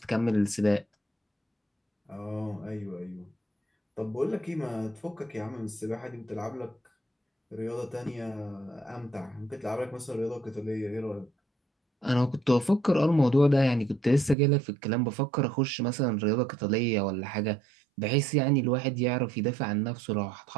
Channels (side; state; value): left; drops out; at 14.4 s